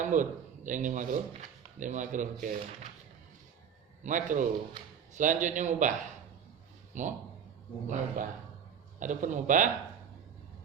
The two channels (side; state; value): left; quieter; 7.9 dB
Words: Yang di makruh ke makruh. Selanjutnya mubah. Mubah. Adapun mubah